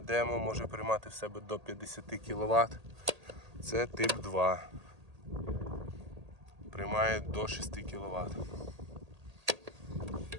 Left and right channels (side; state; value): left; late; 1.8 ms